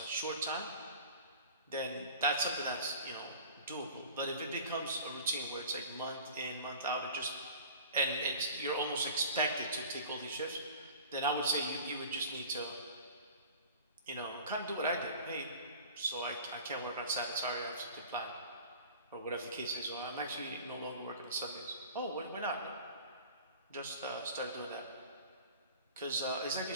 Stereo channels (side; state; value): both; inverted; correlation -0.42